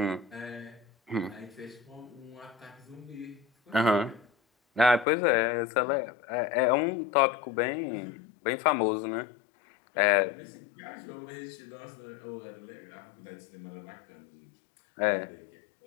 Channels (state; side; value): drops out; right; at 5.1 s